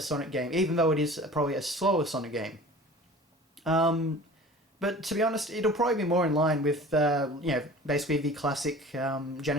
Sonic game, even though it is probably a slower Sonic game. But to be honest, it'll probably be more in line with, basically the classic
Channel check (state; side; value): normal; both; correlation 0.42